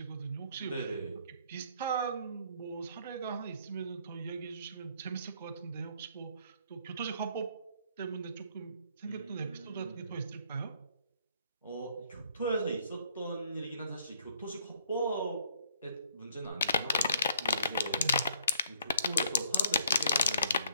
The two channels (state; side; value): inverted; both; correlation -0.64